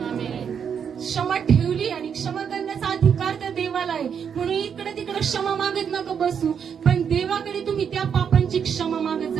क्षमा ठेवली आणि क्षमा करण्याचा अधिकार त्या देवाला आहे. म्हणून इकडे तिकडे क्षमा मागत नका बसू, पण देवाकडे तुम्ही त्या पापांची क्षमा मागत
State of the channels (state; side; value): quieter; left; 7.4 dB